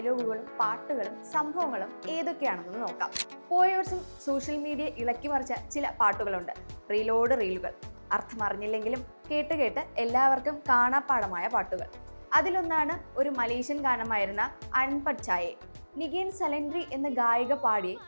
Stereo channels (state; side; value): inverted; both; correlation -1.00